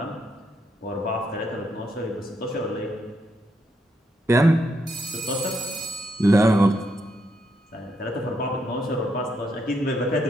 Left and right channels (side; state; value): both; normal; correlation 0.78